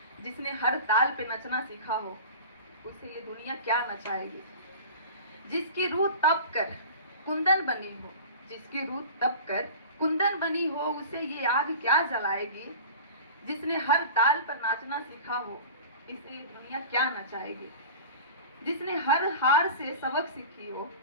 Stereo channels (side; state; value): both; inverted; correlation -0.37